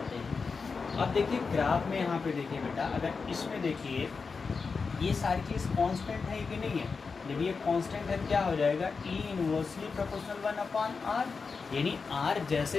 हैं। अब देखिए ग्राफ में यहाँ पे देखिए बेटा, अगर इसमें देखिए ये सारी चीज़ कांस्टेंट है कि नहीं है, जब ये कांस्टेंट है क्या हो जाएगा, ई इनवर्सली प्रोपोर्शनल 1 अपॉन आर, यानी आर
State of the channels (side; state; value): right; quieter; 4.9 dB